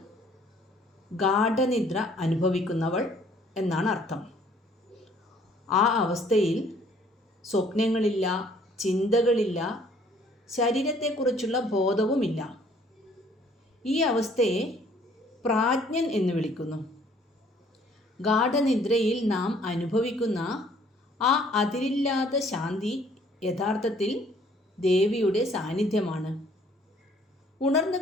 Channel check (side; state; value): both; normal; correlation 0.59